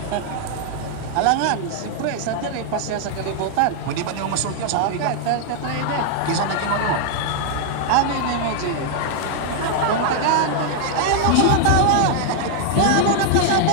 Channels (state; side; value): different; both; correlation 0.00